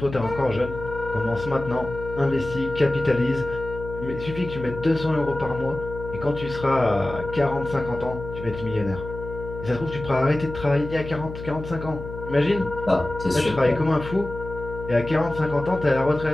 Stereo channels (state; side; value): noise; left; hum, 10 dB below the sound